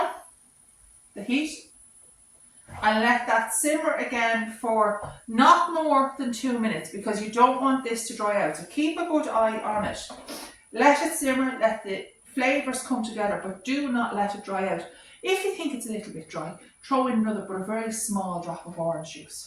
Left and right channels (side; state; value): both; identical; correlation 1.00